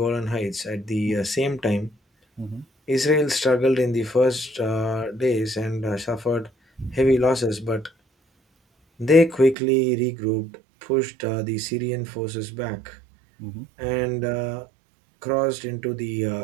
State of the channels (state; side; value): drops out; left; at 9.6 s